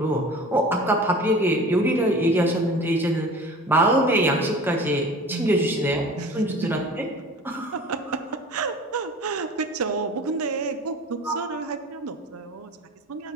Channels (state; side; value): normal; both; correlation 0.40